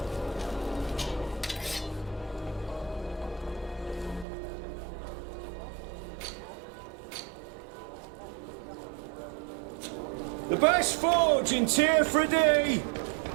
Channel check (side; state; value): left; drops out; at 4.2 s